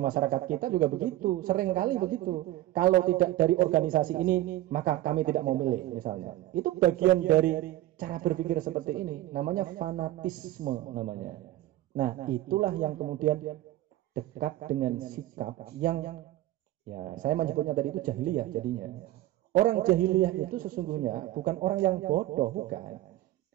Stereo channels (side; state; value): left; quieter; 15.3 dB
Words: masyarakat kita juga begitu, sering kali begitu. Kalau tidak dari organisasi ini, maka kami tidak mau milih misalnya. Itu bagian dari cara berpikir seperti ini, namanya fanatisme namanya. Nah, itulah yang kemudian dekat dengan sikap yang ya saya menyebutnya tadi itu jahiliyah jadinya. Orang jahiliyah itu sesungguhnya bukan orang yang bodoh, bukan.